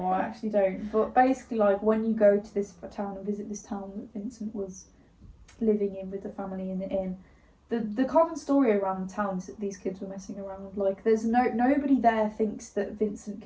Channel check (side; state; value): both; identical; correlation 1.00